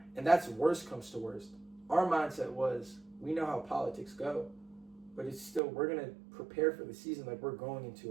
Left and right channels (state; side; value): drops out; left; at 5.6 s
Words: And that's worst comes to worst. Our mindset was, we know how politics go, but it's still, we're going to prepare for the season like we're going into